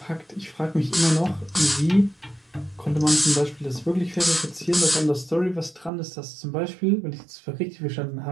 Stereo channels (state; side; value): drops out; left; at 5.9 s